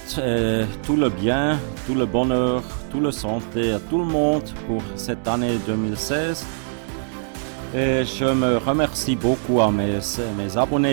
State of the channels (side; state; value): left; silent; digital silence